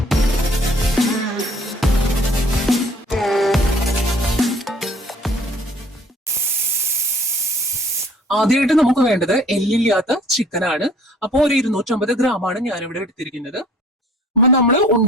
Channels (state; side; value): normal; both; correlation 0.54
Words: ആദ്യമായിട്ട് നമുക്ക് വേണ്ടത് എല്ലില്ലാത്ത ചിക്കനാണ്. അപ്പോൾ ഒരു 250 ഗ്രാമാണ് ഞാനിവിടെ എടുത്തിരിക്കുന്നത്. അപ്പൊ നമ്മൾ